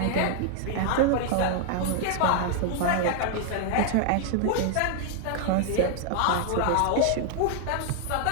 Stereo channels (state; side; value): different; both; correlation 0.00